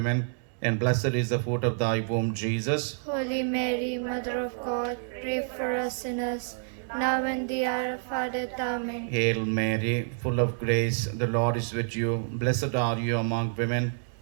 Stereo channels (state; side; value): silent; left; digital silence